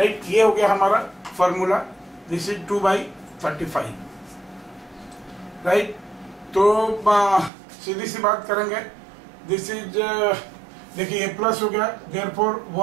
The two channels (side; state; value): left; drops out; at 7.5 s